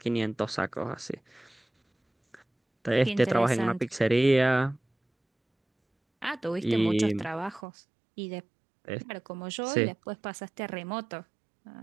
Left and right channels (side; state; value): left; drops out; at 7.6 s